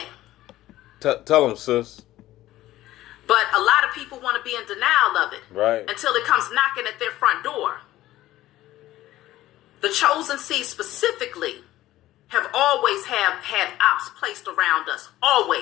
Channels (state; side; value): quieter; right; 15.3 dB